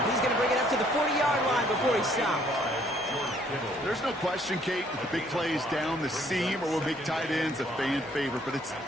he's going to bring it up to the 40-yard line before he stops. There's no question, Kate, that the big plays down the seam or will make tight ends a fan favorite, but it's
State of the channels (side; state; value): both; normal; correlation 0.63